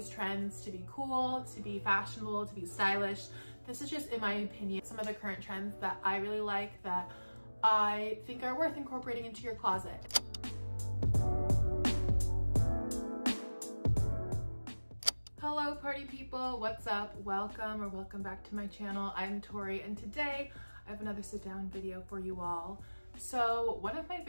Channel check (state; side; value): inverted; both; correlation -1.00